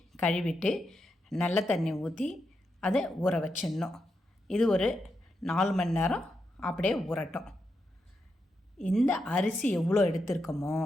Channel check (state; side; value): normal; both; correlation 0.85